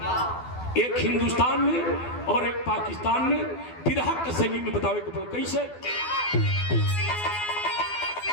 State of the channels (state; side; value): late; right; 12 ms